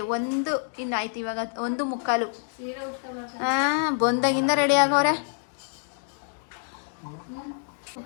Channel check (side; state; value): right; silent; digital silence